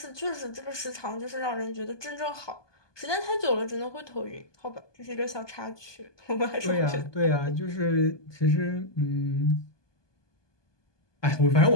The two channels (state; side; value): late; right; 1.2 ms